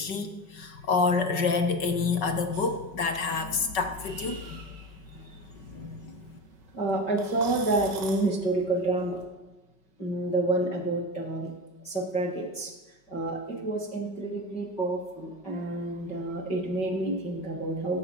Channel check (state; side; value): late; right; 5.3 ms